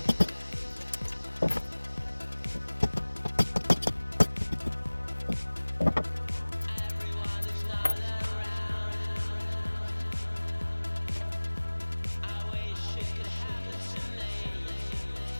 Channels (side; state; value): both; inverted; correlation -1.00